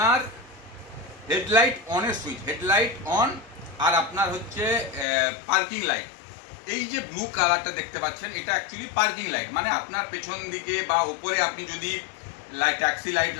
হেডলাইট অনের সুইচ, হেডলাইট অন। আর আপনার হচ্ছে পার্কিং লাইট, এই যে ব্লু কালারটা দেখতে পাচ্ছেন এটা অ্যাকচুয়ালি পার্কিং লাইট, মানে আপনার পেছন দিকে বা উপরে আপনি যদি ট্যাক্সি লাইট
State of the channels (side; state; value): right; drops out; at 5.1 s